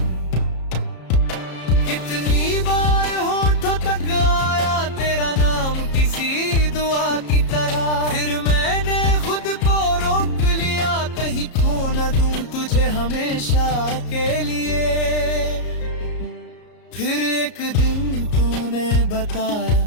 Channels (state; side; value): late; right; 33 ms